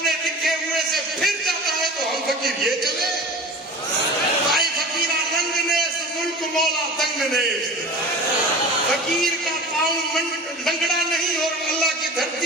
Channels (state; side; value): normal; both; correlation 0.36